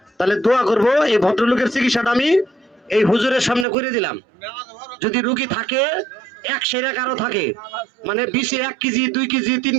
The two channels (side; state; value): left; drops out; at 3.7 s